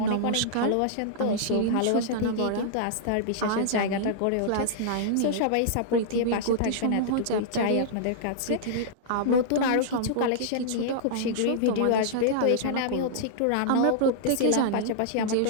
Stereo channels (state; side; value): different; both; correlation -0.02